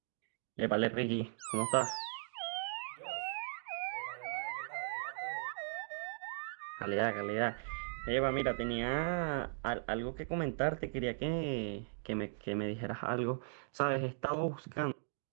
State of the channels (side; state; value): left; silent; digital silence